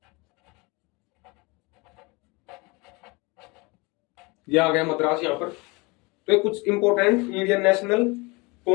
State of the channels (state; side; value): quieter; right; 26.6 dB